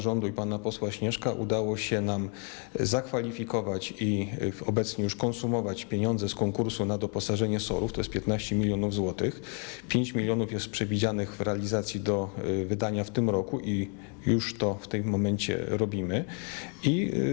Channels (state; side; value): quieter; right; 38.9 dB